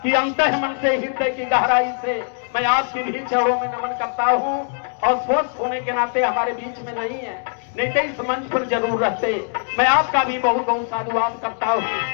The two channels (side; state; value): right; silent; 55 dB below the other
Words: कि अंतः मन से, हृदय की गहराई से मैं आपके भी चरणों में नमन करता हूं। और स्वस्थ होने के नाते हमारे बीच में नहीं है, नहीं तो इस मंच पर जरूर रहते। मैं आपका भी बहुत बहुत साधुवाद करता हूं।